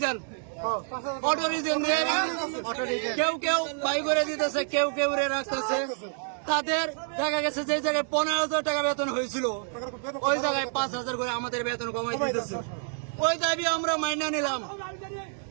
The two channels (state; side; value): silent; left; 59 dB below the other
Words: দিয়ে কেউ কেউ বাই করে দিতেছে, কেউ কেউ রাখতেছে। তাদের দেখা গেছে যে জায়গায় 15,000 টাকা বেতন হয়েছিল ওই জায়গায় 5,000 করে আমাদের বেতন কমাই দিতেছে। ওই দাবি আমরা মাইনা নিলাম।